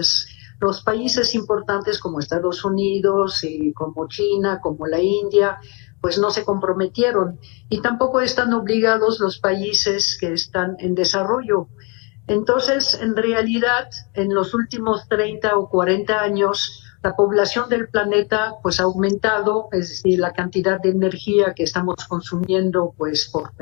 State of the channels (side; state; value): right; quieter; 32.2 dB